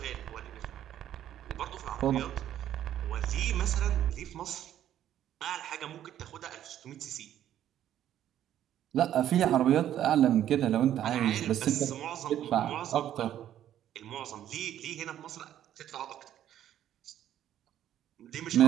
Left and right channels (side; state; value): left; quieter; 11.4 dB